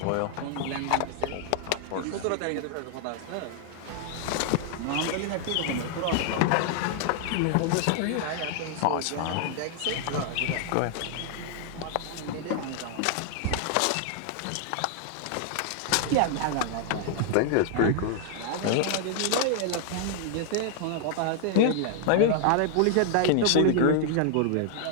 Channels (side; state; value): both; different; correlation 0.00